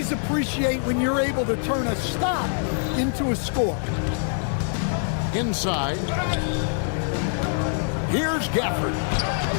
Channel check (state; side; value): silent; right; 62 dB below the other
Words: appreciate when you're able to turn a stop into a score. Inside. Here's Gafford.